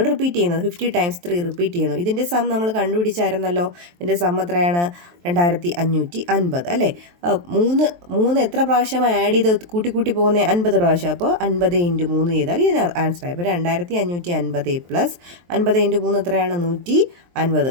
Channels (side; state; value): left; late; 23 ms